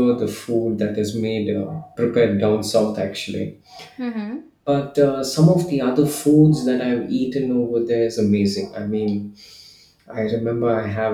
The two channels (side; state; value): both; identical; correlation 1.00